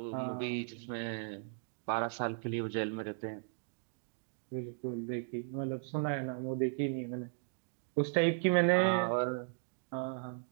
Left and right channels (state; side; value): silent; left; digital silence